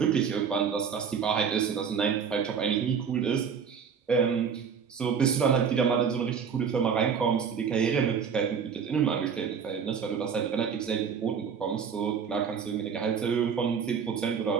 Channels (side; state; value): left; quieter; 6.7 dB